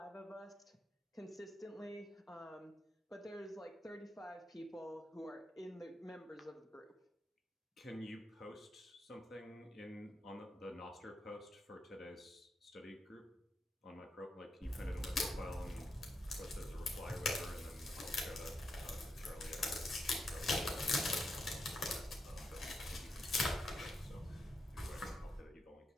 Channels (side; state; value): both; normal; correlation 0.84